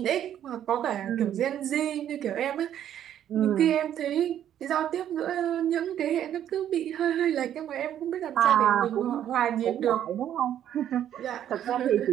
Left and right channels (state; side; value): quieter; left; 10.5 dB